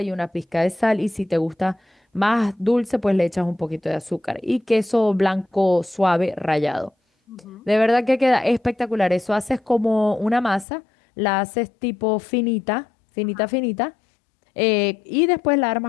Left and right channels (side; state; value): right; drops out; at 10.7 s